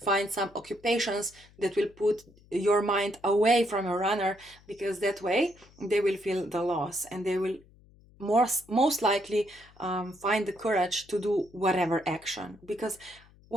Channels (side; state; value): left; noise; hum, 27 dB below the sound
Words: Find some occupations that will put your mind away from your runner, because that way they will feel the loss, and they will most likely find the courage to do whatever action, because